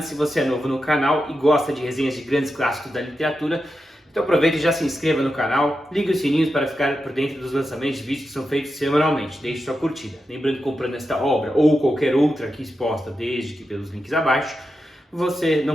se você é novo no canal e gosta de resenhas de grandes clássicos da literatura, então aproveite e já se inscreva no canal, ligue os sininhos para ficar por dentro dos lançamentos de vídeos que são feitos semanalmente, deixe sua curtida. Lembrando que comprando esta obra ou qualquer outra aqui exposta, desde que pelos links abaixo, você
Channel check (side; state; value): both; normal; correlation 0.89